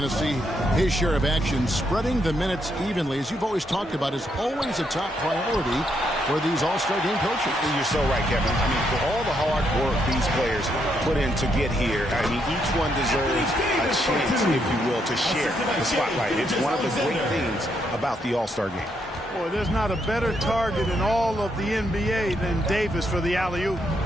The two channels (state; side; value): normal; both; correlation 0.77